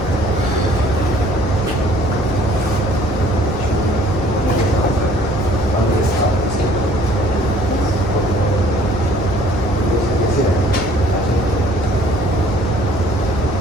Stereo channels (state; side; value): normal; both; correlation 0.56